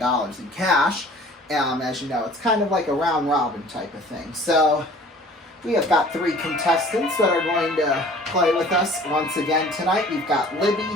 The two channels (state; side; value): normal; both; correlation 0.49